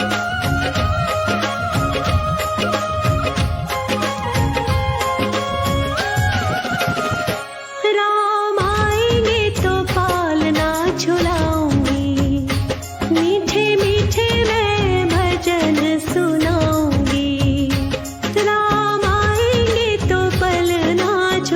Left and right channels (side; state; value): both; identical; correlation 1.00